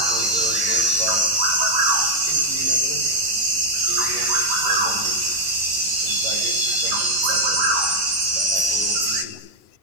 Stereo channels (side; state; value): left; late; 11 ms